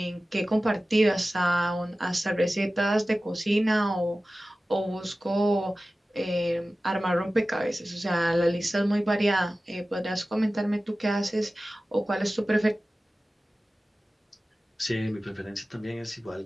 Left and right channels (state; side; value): normal; both; correlation 0.96